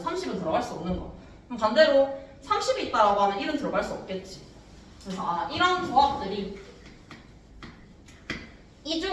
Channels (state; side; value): identical; both; correlation 1.00